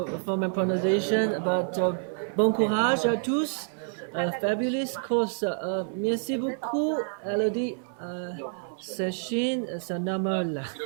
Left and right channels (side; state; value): left; silent; 58 dB below the other